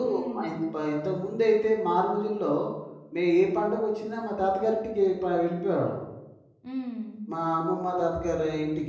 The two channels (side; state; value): both; identical; correlation 1.00